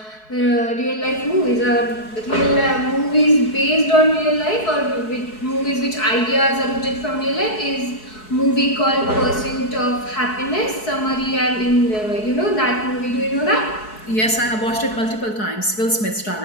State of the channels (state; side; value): late; right; 4.7 ms